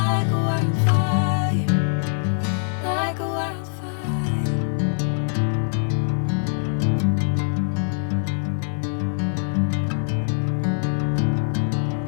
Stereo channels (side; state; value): right; silent; digital silence